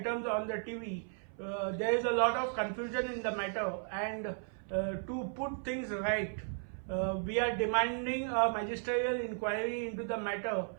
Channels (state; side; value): silent; left; 54 dB below the other